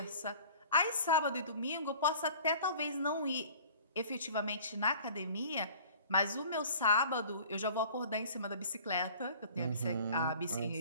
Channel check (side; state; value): both; inverted; correlation -0.47